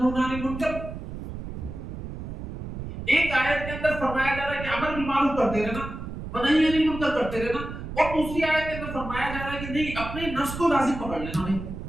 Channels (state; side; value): noise; right; rumble, 8 dB below the sound